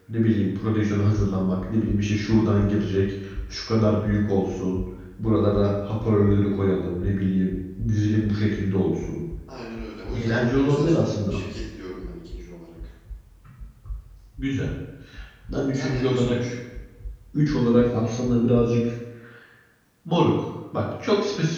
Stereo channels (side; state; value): both; identical; correlation 1.00